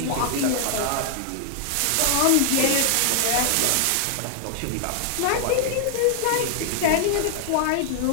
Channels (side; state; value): both; different; correlation 0.00